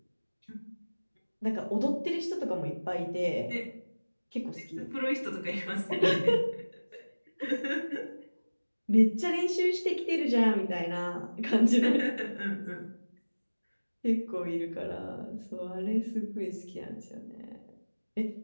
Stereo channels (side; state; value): both; inverted; correlation -1.00